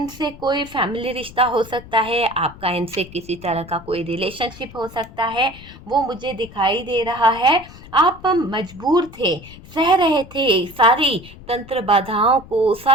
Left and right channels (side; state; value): left; noise; rumble, 18 dB below the sound